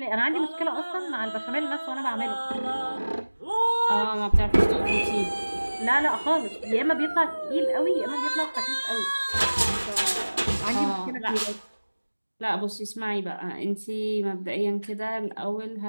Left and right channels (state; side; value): inverted; both; correlation -1.00